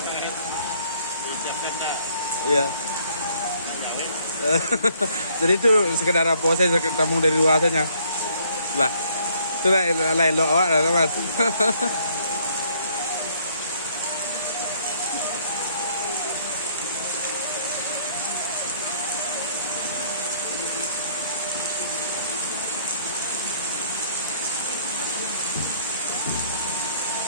Iya. Jadi itu sekedar apa saya tamu dari luar saja. Lah. Itu lah lain lo awak lah mas.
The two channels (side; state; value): both; inverted; correlation -0.63